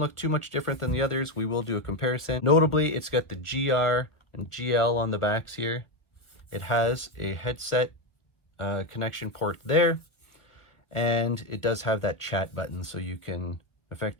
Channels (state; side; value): late; right; 1.0 ms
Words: too much different than the others. We will do a comparison. Notably, it's got the GR and GL on the backs here. It has a headset connection port there, and it does have that chat button, so you can